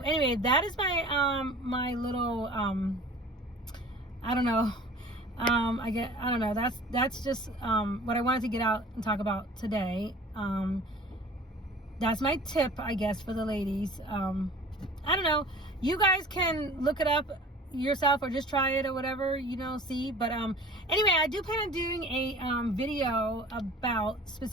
that is my my little I don't know. I don't know. That's just what I wanted to get out and talk about today. That's my tip, I guess, for the ladies. I don't know. You guys can look it up yourself or just try it or whatever, you know, see. But anyway, I do plan on doing a video about,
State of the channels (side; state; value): both; normal; correlation 0.44